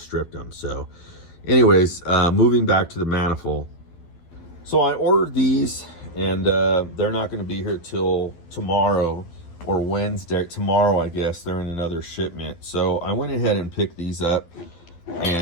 stripped them. So anyways, moving back to the manifold. So I ordered these, and they're not going to be here till tomorrow or Wednesday. Tomorrow, I guess. They're in another shipment. So I went ahead and picked these up,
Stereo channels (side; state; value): right; late; 12 ms